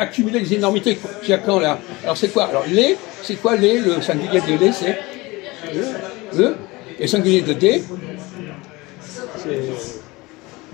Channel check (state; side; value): quieter; right; 22.4 dB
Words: des énormités jusqu'à quand, là? Alors, c'est quoi? Alors, les, c'est quoi les? Le singulier de les, c'est le. Et le singulier de des? C'est